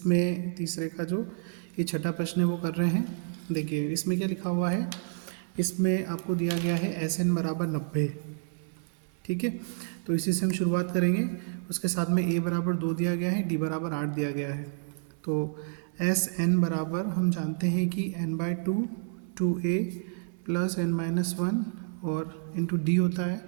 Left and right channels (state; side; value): silent; left; 58 dB below the other